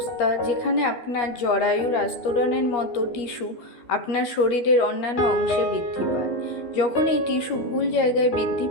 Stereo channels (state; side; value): late; right; 13 ms